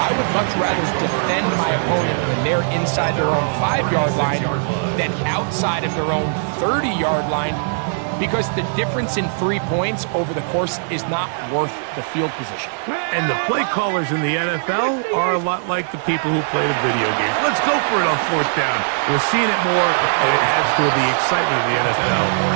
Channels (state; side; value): silent; left; 66 dB below the other